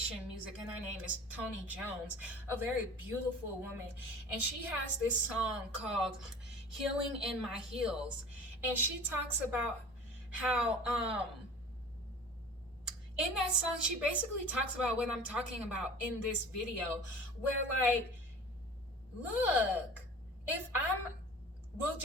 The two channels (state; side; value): normal; both; correlation 0.41